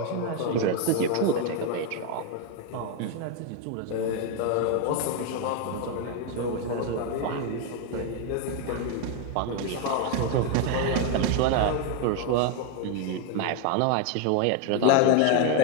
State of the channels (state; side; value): different; both; correlation 0.01